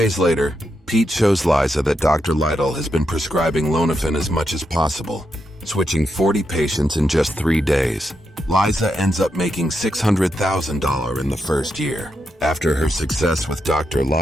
later, Pete shows Liza that Dr. Lytle has been prescribing Lonafen as much as possible, switching 40 patients in just 3 days. Liza ends up making $600,000 in the first year. After her success with Dr.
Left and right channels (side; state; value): both; normal; correlation 0.83